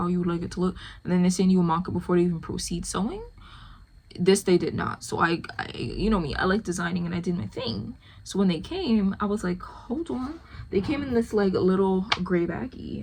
you would like it to look, and then they send you a mock-up before they even proceed sewing. This they did not. So I you know me, I like designing, and I did my thing. So when they came, I was like, hold on. They came in this like little gray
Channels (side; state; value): both; identical; correlation 1.00